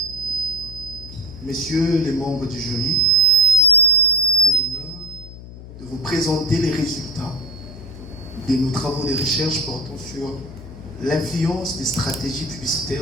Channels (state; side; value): noise; left; hum, 14 dB below the sound